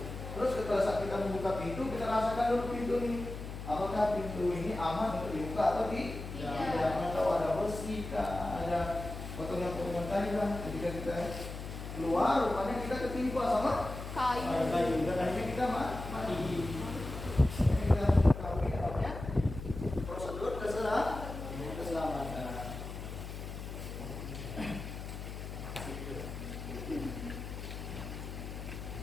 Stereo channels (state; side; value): noise; left; hum, 8 dB below the sound